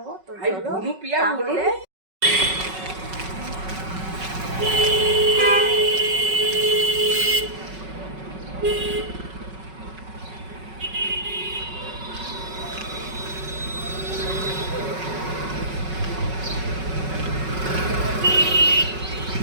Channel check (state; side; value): late; left; 5.3 ms